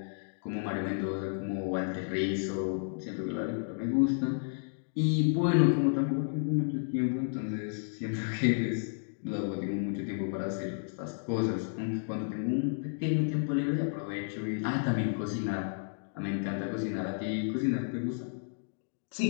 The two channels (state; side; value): silent; right; digital silence